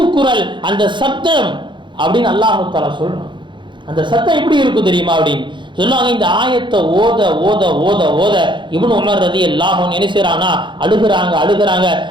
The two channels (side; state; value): left; late; 0.23 ms